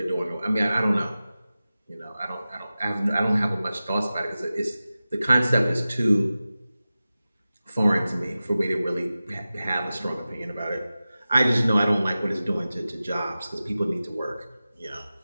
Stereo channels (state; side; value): inverted; both; correlation -0.95